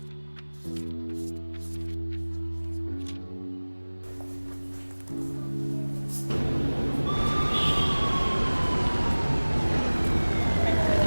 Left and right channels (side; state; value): both; inverted; correlation -1.00